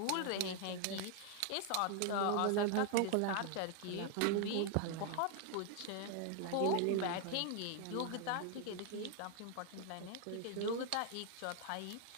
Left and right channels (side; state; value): both; different; correlation 0.00